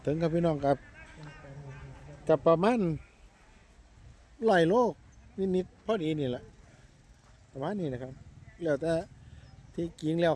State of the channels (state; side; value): identical; both; correlation 1.00